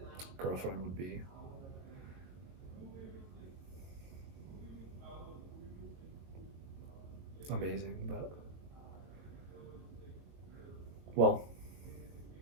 girlfriend would be amazing, but well,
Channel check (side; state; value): left; late; 22 ms